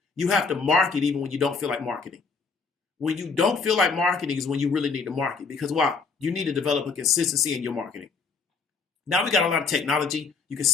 you have to market even when you don't feel like marketing. When you don't feel like marketing is when you really need to market. Because why? You need to develop a consistency in your marketing. Now we got a lot of technology. You can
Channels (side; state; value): right; quieter; 4.8 dB